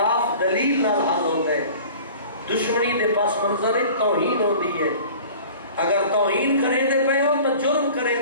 دلیل نال حل ہوتا ہے، دشمنی دے پاس منظر توہین ہوتی ہے۔ اگر توہین کریں دے پے ہو تو جرم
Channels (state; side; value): inverted; both; correlation -0.44